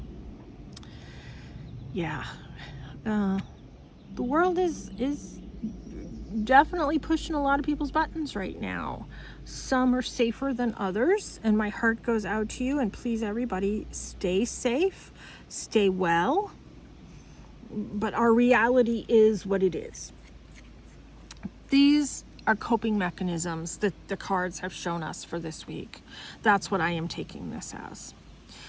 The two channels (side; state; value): both; identical; correlation 1.00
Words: Yeah, the world is definitely pushing a lot of people's buttons right now. Some are safer than others, and my heart goes out to you, and please everybody stay safe, stay well, but our reality is what it is. These are coping mechanisms that the cards have shown us for this week. That's what I am taking this as.